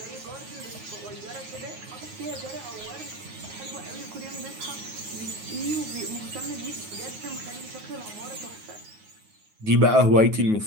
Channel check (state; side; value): late; left; 9.4 ms